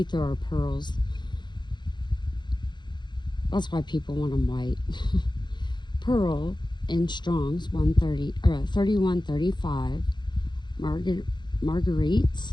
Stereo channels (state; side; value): late; right; 0.22 ms